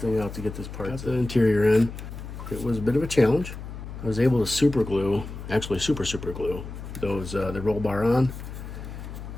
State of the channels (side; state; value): left; noise; hum, 10 dB below the sound